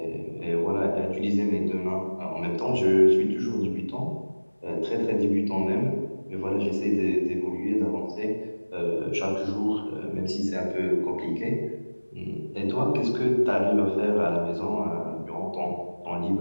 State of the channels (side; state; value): both; inverted; correlation -1.00